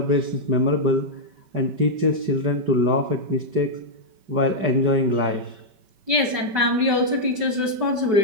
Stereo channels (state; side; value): late; left; 5.2 ms